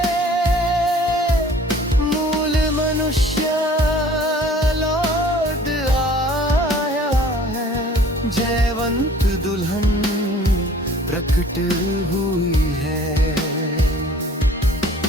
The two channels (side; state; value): both; normal; correlation 0.51